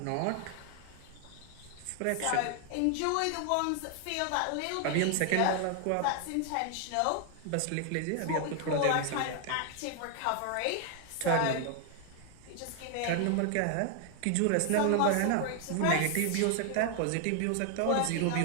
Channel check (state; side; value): different; both; correlation 0.00